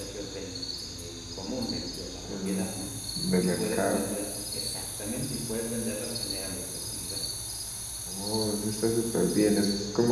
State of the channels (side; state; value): both; identical; correlation 1.00